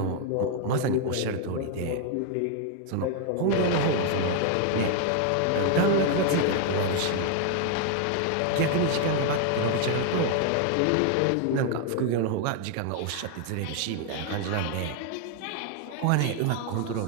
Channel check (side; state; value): both; different; correlation 0.00